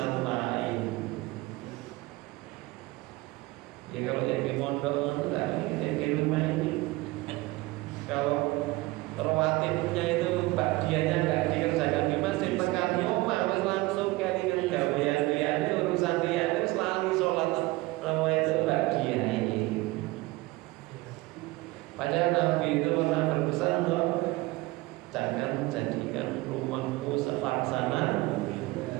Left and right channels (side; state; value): left; quieter; 20.8 dB